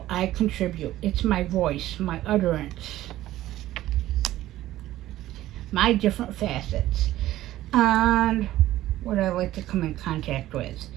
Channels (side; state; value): left; quieter; 14.7 dB